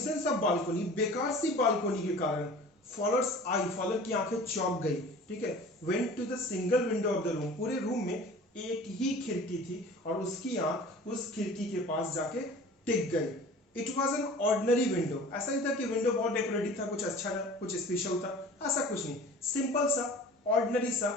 of balcony, बेकार सी बालकोनी के कारण। फॉलोअर्स आई, फॉलोअर की आंखें चौंक गई। ठीक है, went to the single window of the room, पूरे रूम में एक ही खिड़की थी और उसकी आंख उस खिड़की के पास जाके टिक गई। It was an ordinary window, ऐसा नहीं था कि विंडो बहुत डेकोरेटिव था, कुछ अच्छा था, कुछ स्पेशल था, ऐसा कुछ नहीं, सिंपल सा ऑर्डिनरी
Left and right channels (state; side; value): normal; both; correlation 0.43